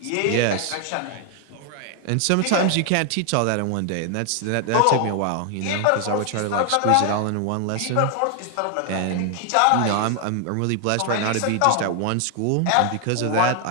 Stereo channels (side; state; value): both; different; correlation 0.00